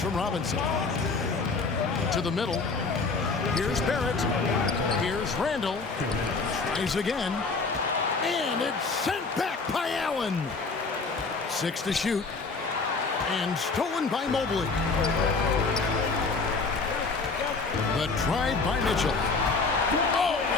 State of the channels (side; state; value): right; quieter; 4.2 dB